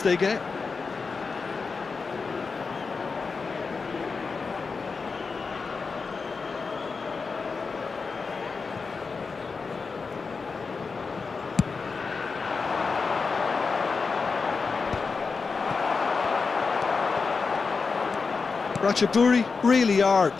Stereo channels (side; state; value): right; quieter; 4.7 dB